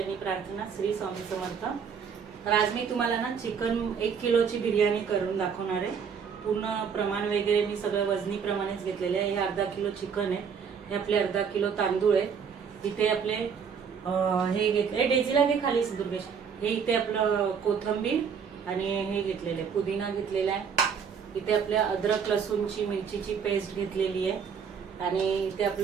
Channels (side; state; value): left; quieter; 6.7 dB